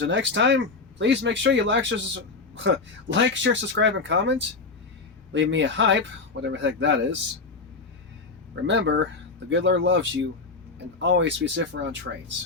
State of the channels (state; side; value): quieter; right; 4.1 dB